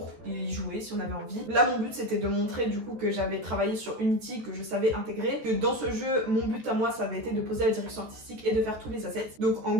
y jouer si on avait envie. Là mon but c'était de montrer du coup que j'avais travaillé sur Unity, que je savais intégrer, que dans ce jeu mon but à moi ça avait été de poser la direction artistique et de faire tous les assets, donc en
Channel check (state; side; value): late; left; 14 ms